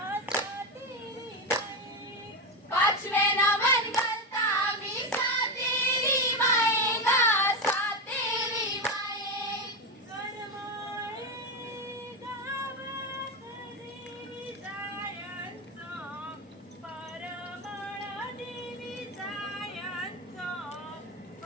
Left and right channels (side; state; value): both; normal; correlation 0.13